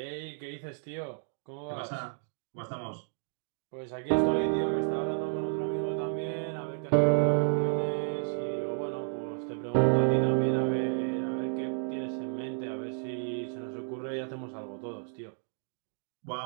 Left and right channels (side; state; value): left; silent; digital silence